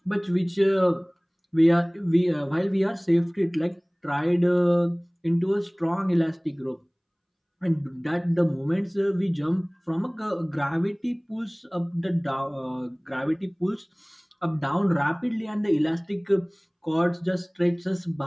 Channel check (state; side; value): identical; both; correlation 1.00